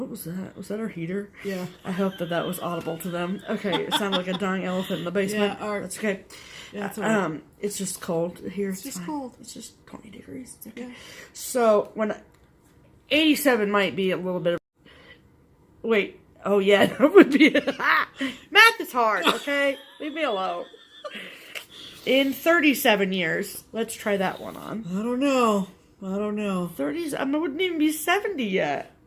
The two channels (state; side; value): identical; both; correlation 1.00